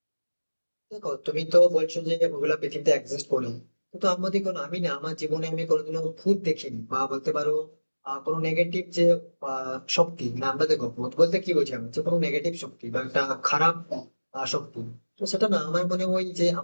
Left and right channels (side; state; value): both; inverted; correlation -1.00